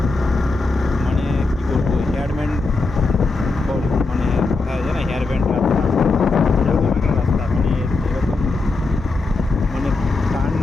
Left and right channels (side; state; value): right; quieter; 3.7 dB